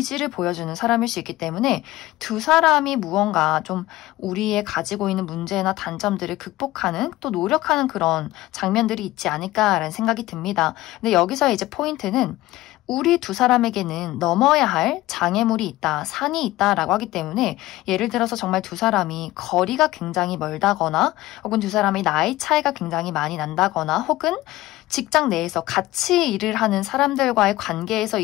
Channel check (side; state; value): right; quieter; 17.2 dB